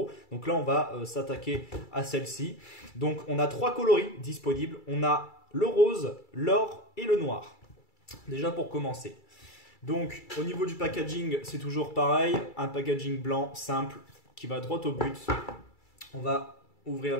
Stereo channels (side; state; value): right; late; 2.3 ms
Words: Donc là, on va s'attaquer à celle-ci. Donc on a trois coloris disponibles. On a le rose, l'or et le noir. Déjà pour commencer. Donc au niveau du packaging, c'est toujours pareil, un packaging blanc simple qui va droit au but. On va ouvrir